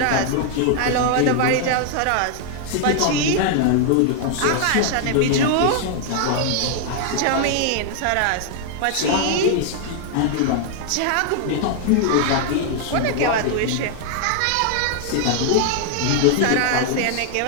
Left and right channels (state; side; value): different; both; correlation 0.00